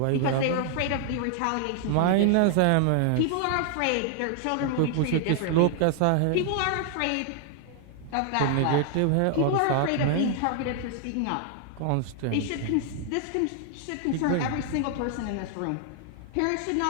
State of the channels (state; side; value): different; both; correlation 0.00